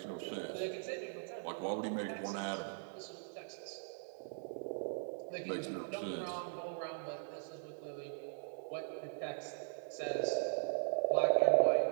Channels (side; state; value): left; silent; digital silence